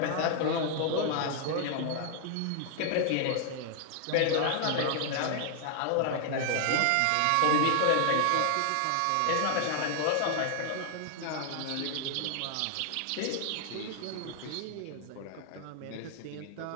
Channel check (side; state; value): both; different; correlation 0.00